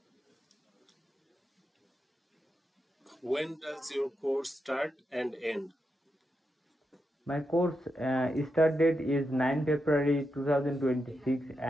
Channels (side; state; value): both; normal; correlation 0.86